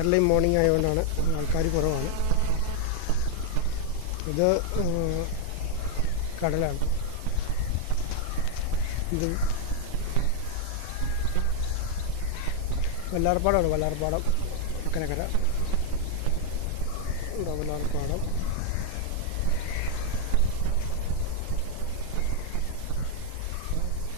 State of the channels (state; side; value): different; both; correlation 0.00